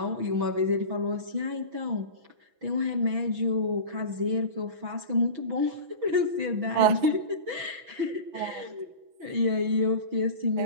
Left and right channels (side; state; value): left; late; 6.1 ms